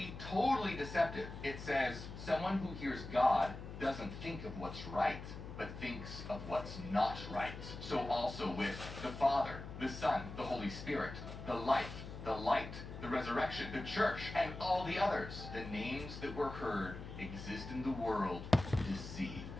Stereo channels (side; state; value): left; noise; hum, 10 dB below the sound